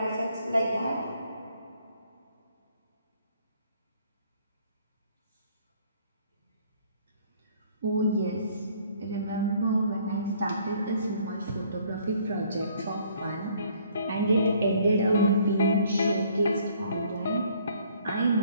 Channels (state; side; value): inverted; both; correlation -0.61